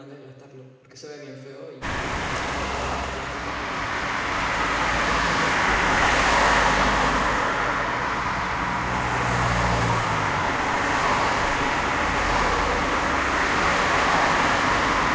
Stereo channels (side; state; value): both; identical; correlation 1.00